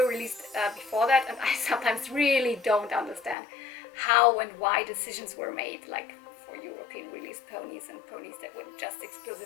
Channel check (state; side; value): drops out; right; at 3.4 s